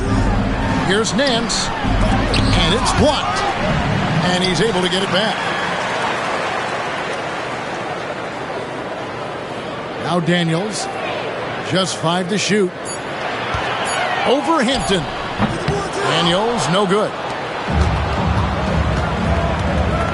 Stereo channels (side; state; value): both; identical; correlation 1.00